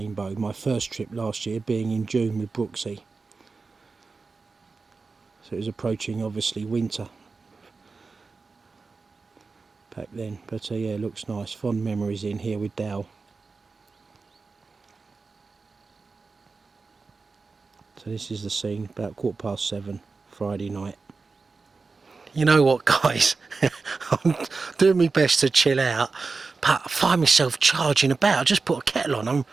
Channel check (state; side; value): quieter; left; 4.2 dB